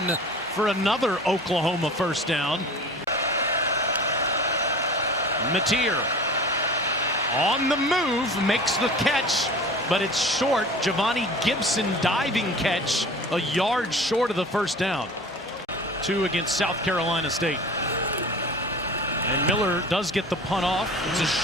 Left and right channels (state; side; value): normal; both; correlation 0.40